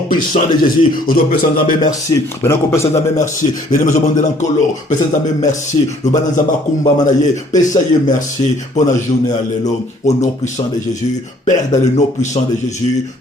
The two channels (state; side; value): normal; both; correlation 0.59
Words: puissant de Jésus, au nom puissant de Jésus, merci, benako puissant de Jésus, merci, benako puissant de Jésus, puissant de Jésus, merci, le banan zamba kumba manaye, pesaye merci, pour la journée alléluia, au nom puissant de Jésus, Père dans le nom puissant de Jésus,